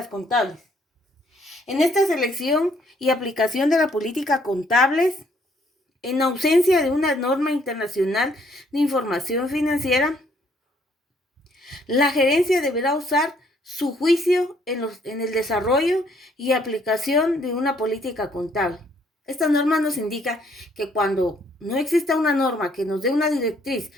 contables. En esta selección y aplicación de la política contables, en ausencia de una norma internacional de información financiera, la gerencia deberá usar su juicio en el desarrollo y aplicación de una política contable. Esta norma nos indica que cuando no exista una norma que nos dé una directriz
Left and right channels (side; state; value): both; normal; correlation 0.66